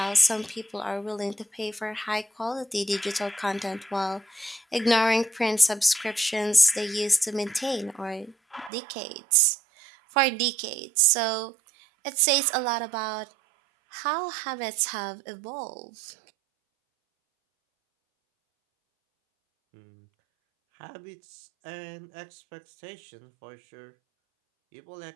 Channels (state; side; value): drops out; left; at 8.7 s